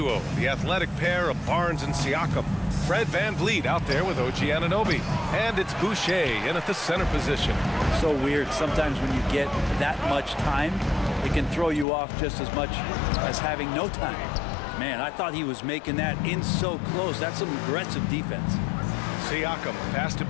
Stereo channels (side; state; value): right; drops out; at 11.9 s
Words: the athletic pair of Barnes and Siakam. Fred VanVleet out there with OG Anunoby. And it's Boucher in at the center position. So weird. Sometimes when you get that much time, it can throw you off just as much as having no time. Man, I thought he was making that in so close. That's some aggressive defense. Siakam pass to